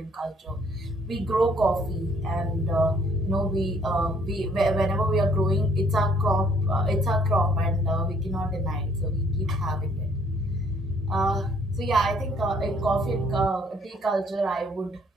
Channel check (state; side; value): normal; both; correlation 0.62